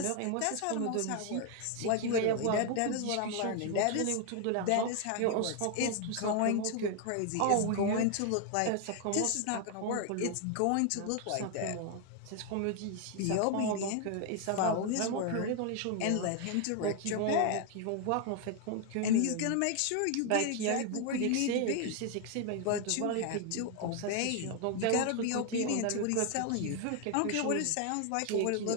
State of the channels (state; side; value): different; both; correlation 0.00